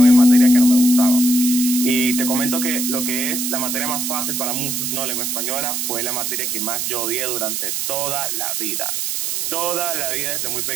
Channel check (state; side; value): noise; right; hiss, 2 dB below the sound